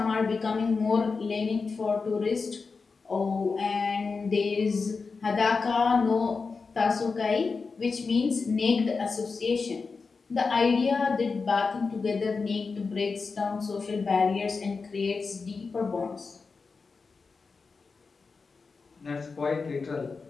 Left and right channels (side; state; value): right; quieter; 4.6 dB